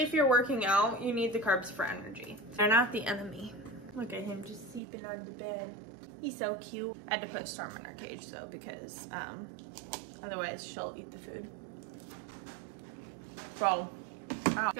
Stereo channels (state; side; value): drops out; left; at 4.8 s